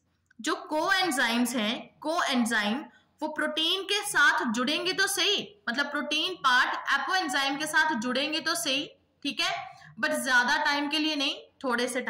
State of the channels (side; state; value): both; identical; correlation 1.00